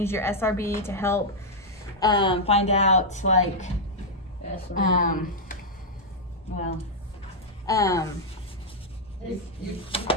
your SRB to help find out, like, You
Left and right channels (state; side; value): normal; both; correlation -0.04